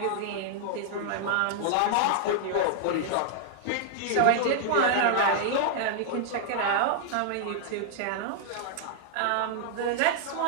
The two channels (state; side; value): different; both; correlation -0.01